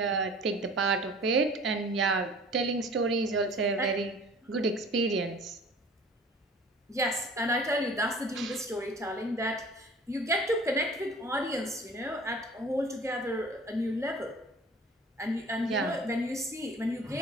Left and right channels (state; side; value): normal; both; correlation 0.46